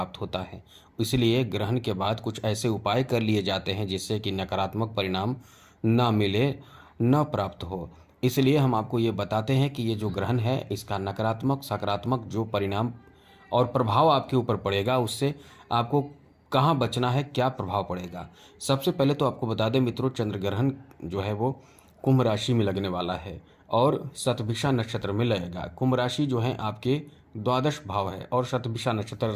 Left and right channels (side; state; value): both; identical; correlation 1.00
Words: होता है। इसलिए ग्रहण के बाद कुछ ऐसे उपाय कर लिए जाते हैं जिससे कि नकारात्मक परिणाम ना मिले, न प्राप्त हो। इसलिए हम आपको ये बताते हैं कि ये जो ग्रहण है इसका नकारात्मक सकारात्मक जो परिणाम और प्रभाव आपके ऊपर पड़ेगा, उससे आपको कहाँ बचना है, क्या प्रभाव पड़ेगा। सबसे पहले तो आपको बता दें मित्रों, चंद्र ग्रहण जो है वो कुंभ राशि में लगने वाला है और शतभिषा नक्षत्र में लगेगा। कुंभ राशि जो है आपके द्वादश भाव है और शतभिषा नक्षत्र